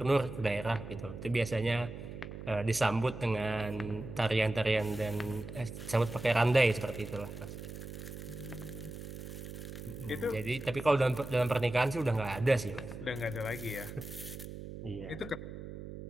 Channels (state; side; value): noise; right; hum, 10 dB below the sound